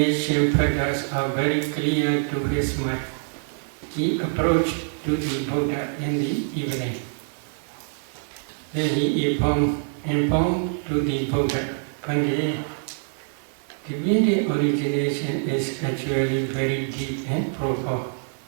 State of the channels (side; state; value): left; silent; 62 dB below the other